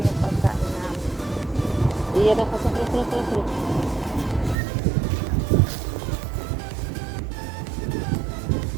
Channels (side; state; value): left; drops out; at 4.5 s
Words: Iya dah pasang terus.